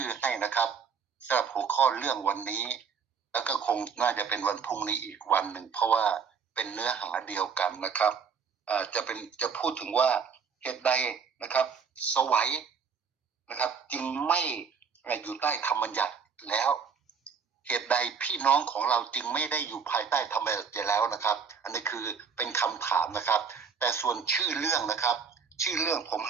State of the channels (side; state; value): left; quieter; 6.2 dB